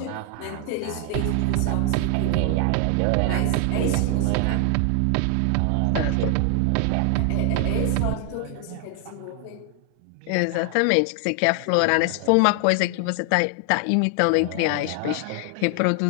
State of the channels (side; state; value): both; different; correlation 0.00